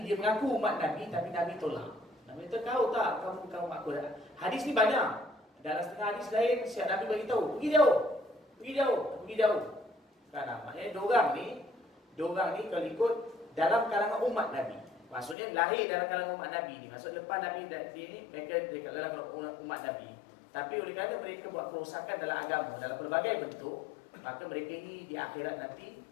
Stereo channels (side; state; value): right; drops out; at 15.4 s